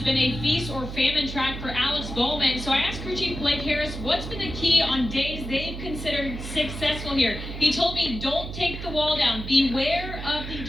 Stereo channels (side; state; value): right; noise; hum, 8 dB below the sound